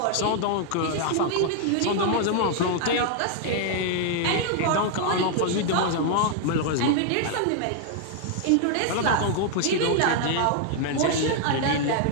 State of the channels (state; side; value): different; both; correlation 0.00